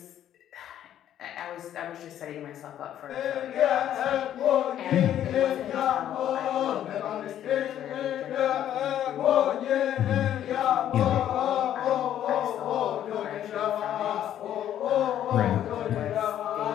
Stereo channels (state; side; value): quieter; right; 11.0 dB